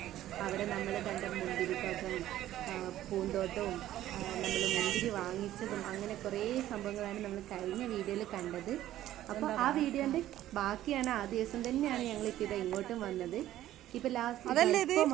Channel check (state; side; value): quieter; left; 13.4 dB